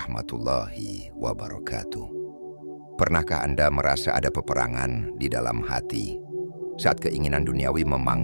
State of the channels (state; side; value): inverted; both; correlation -1.00